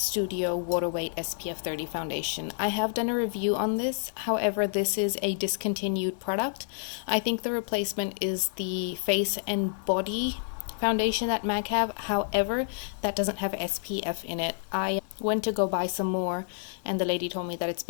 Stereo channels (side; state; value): right; silent; 59 dB below the other